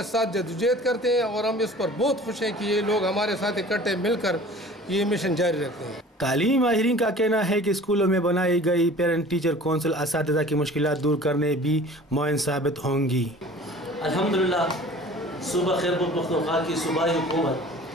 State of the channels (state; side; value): normal; both; correlation 0.45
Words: ساتھ جدوجہد کرتے ہیں، اور ہم اس پر بہت خوش ہیں کہ یہ لوگ ہمارے ساتھ اکٹھے مل کر یہ مشن جاری رکھتے ہیں۔ تعلیمی ماہرین کا کہنا ہے کہ اسکولوں میں بنائی گئی پیرنٹ ٹیچر کونسل اساتذہ کی مشکلات دور کرنے بھی معاون ثابت ہوں گی۔ الحمدللہ صوبہ خیبر پختونخوا کی صوبائی